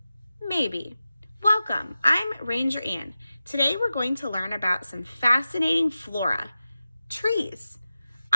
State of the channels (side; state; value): both; inverted; correlation -0.94